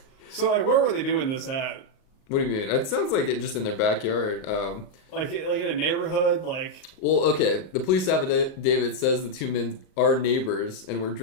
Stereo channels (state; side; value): late; right; 38 ms